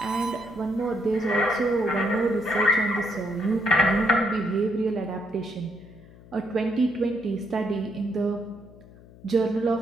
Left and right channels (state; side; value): noise; left; hum, 22 dB below the sound